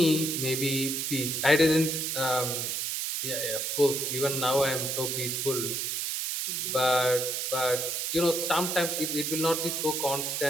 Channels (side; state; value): right; noise; hiss, 1 dB below the sound